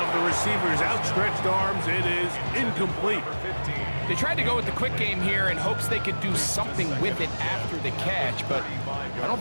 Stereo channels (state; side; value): inverted; both; correlation -1.00